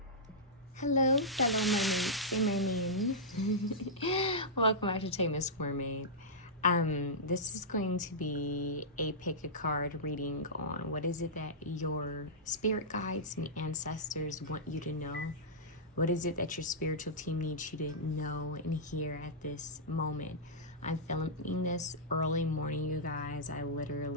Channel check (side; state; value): both; normal; correlation -0.13